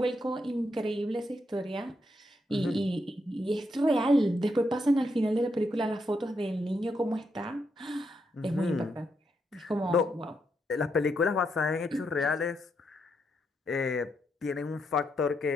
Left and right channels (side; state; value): both; normal; correlation 0.80